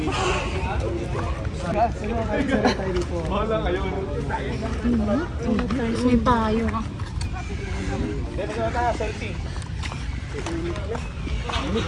May payo ka.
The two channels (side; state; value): both; identical; correlation 1.00